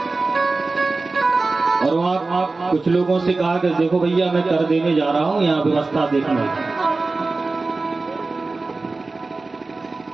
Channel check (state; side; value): quieter; left; 3.6 dB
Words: और वहां कुछ लोगों से कहा कि देखो भैया, मैं कर देने जा रहा हूं, यहाँ व्यवस्था देखना।